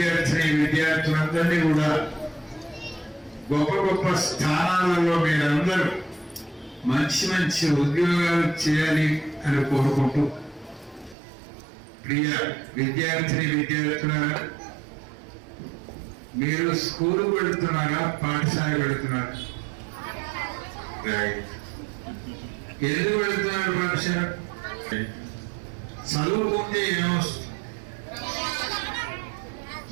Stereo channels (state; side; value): drops out; left; at 11.2 s